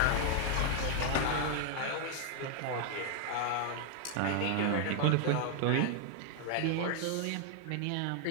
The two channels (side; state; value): both; different; correlation 0.00